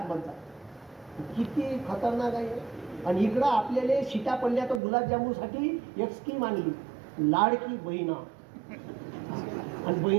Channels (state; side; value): drops out; left; at 4.8 s